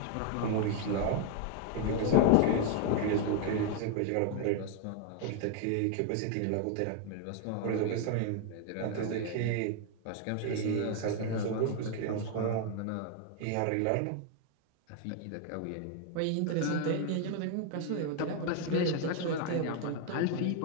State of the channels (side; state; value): both; different; correlation 0.00